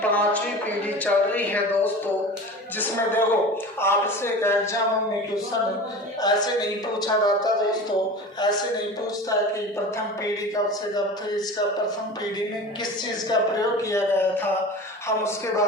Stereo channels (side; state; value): both; normal; correlation 0.34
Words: 5वीं पीढ़ी चल रही है दोस्तों, जिसमें देखो आपसे एक एग्जाम में क्वेश्चन ऐसे नहीं पूछा जाता दोस्तों। ऐसे नहीं पूछता कि प्रथम पीढ़ी कब से कब थी, इसका प्रथम पीढ़ी में किस चीज का प्रयोग किया गया था। हम उसके